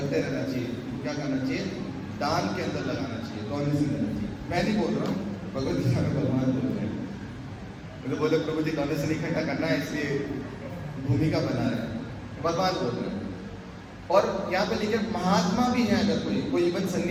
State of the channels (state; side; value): identical; both; correlation 1.00